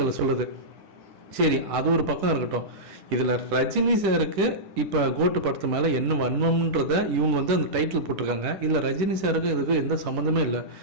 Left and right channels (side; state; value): left; late; 10 ms